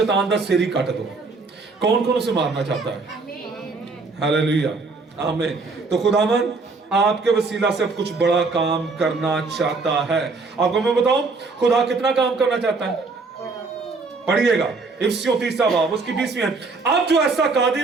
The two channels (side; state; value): left; quieter; 4.0 dB